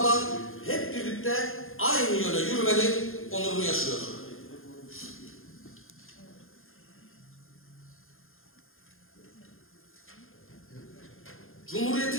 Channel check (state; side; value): late; right; 0.60 ms